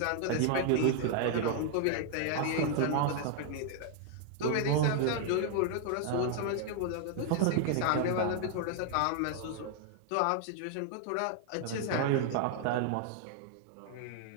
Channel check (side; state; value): both; different; correlation 0.00